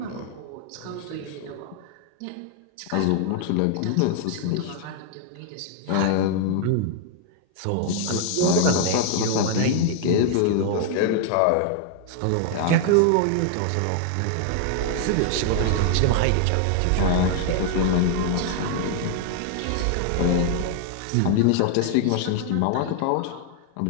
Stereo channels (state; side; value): different; both; correlation 0.00